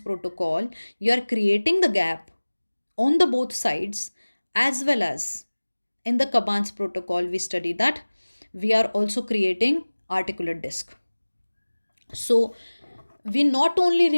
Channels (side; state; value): both; inverted; correlation -1.00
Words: you are creating the gap on the both sides, as well as in the Caban's protocol, we study that we are also creating articulate disc. So we not only